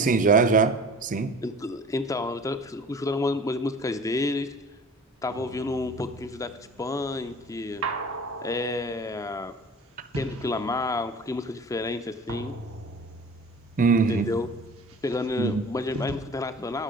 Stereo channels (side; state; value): both; normal; correlation 0.42